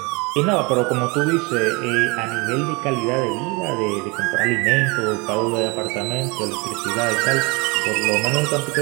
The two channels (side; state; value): left; quieter; 27.9 dB